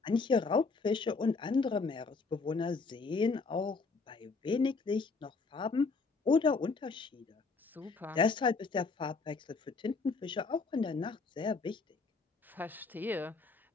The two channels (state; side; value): quieter; right; 4.3 dB